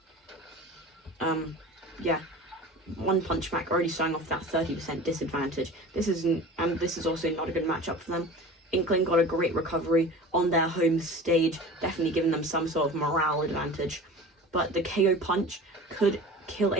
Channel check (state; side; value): normal; both; correlation 0.38